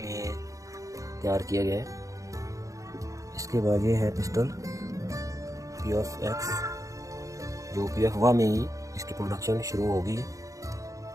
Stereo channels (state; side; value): late; left; 0.16 ms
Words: तैयार किया गया है। इसके बाद ये है पिस्टल POF-X, जो POF-1 में ही इसकी प्रोडक्शन शुरू होगी।